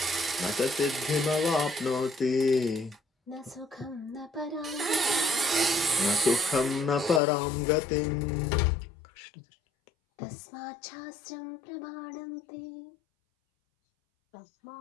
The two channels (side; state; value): right; drops out; at 7.2 s